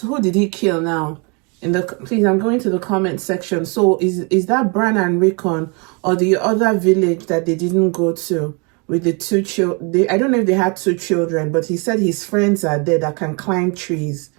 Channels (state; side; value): quieter; left; 32.3 dB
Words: did he kill now? Please, I'm going to the comment section. So is that Bran and Rickon or the other village that they didn't go to with the two children? I don't know if they had two children, but he said his friends are there that can climb trees.